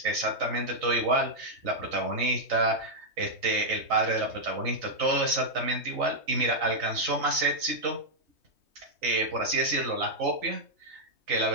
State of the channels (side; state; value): left; late; 3.2 ms